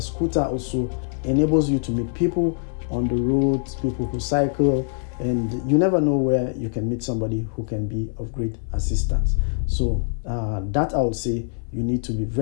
scooter also enables you to meet people on the roads, people who cycle, and you never know where you can meet somebody who can be of great assistance. So that I would say you need to be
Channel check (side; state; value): right; silent; 63 dB below the other